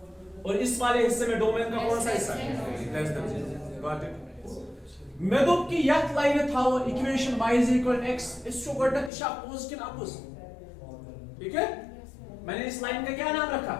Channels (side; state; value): right; drops out; at 9.1 s